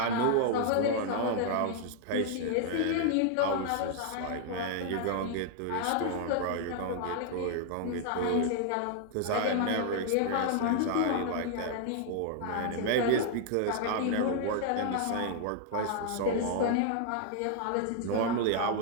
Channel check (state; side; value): different; both; correlation 0.00